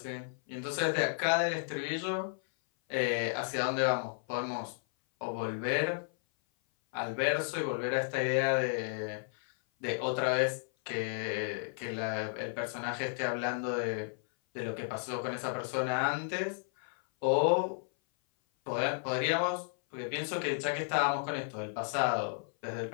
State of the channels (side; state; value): right; silent; 56 dB below the other